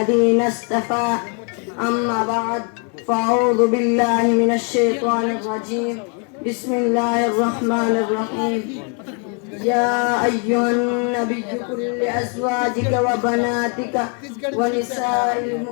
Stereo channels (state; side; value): quieter; right; 37.9 dB